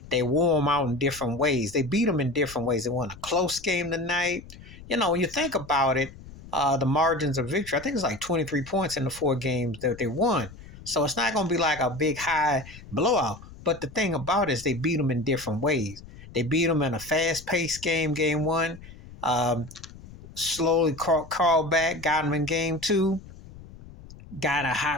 They wore them out in different ways. They beat them in different ways. They won a close game tonight. When you think about it, the margins of victory, I think it's like 23 points in the 4 games that they won. So it's not going to be like a big high blowout. But the thing about it is they beat them in different ways. They beat them in a fast-paced game 1. Slowly crawled back, got them in game 2. Got a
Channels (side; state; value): left; noise; rumble, 18 dB below the sound